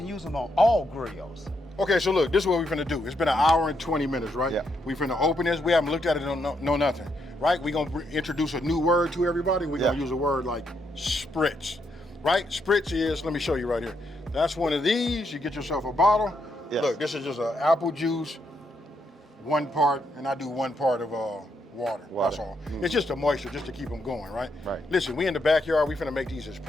use them on all grills. Okay, so look, this is what we're finna do. It's been 1 hour and 20 minutes, right? Yeah. We finna open this. We haven't looked at it, no nothing, right? We're gonna introduce a new word to everybody. We're gonna use a word like spritz, right? Spritz is, let me show you right here. That's one of these. You get yourself a bottle. Yes. Look, this is just an apple juice, 1 part, and I do 1 part of water. That's all. It's just the moisture, just to keep them going, right? Right. Listen, we in the backyard. We finna make these as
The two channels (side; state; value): both; normal; correlation 0.78